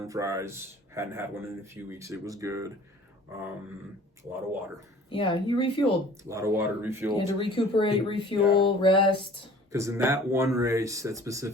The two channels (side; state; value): both; normal; correlation 0.49